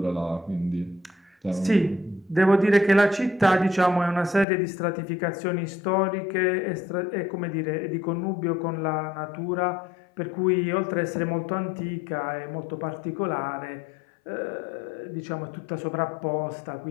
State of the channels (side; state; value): right; drops out; at 4.5 s